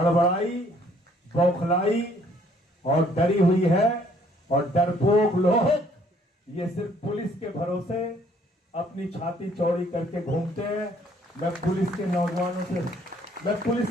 बौखलाई और डरी हुई है। और डरपोक लोग ये सिर्फ पुलिस के भरोसे अपनी छाती चौड़ी करके घूमते हैं। मैं पुलिस के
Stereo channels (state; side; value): normal; both; correlation 0.62